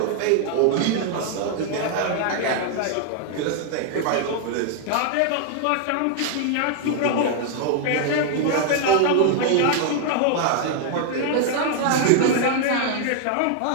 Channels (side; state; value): both; different; correlation 0.00